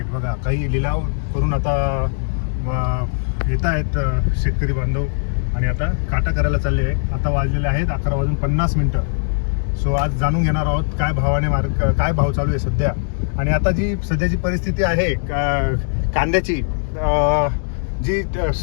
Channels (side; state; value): right; silent; digital silence